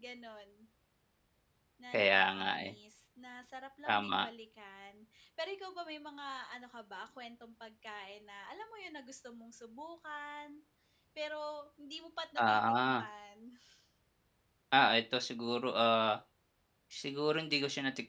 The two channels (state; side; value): identical; both; correlation 1.00